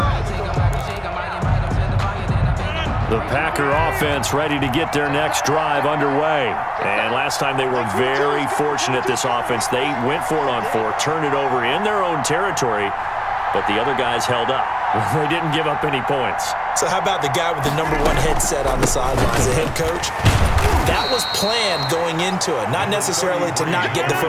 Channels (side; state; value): both; identical; correlation 1.00